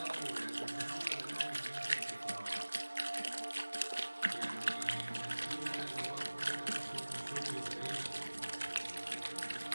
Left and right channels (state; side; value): inverted; both; correlation -1.00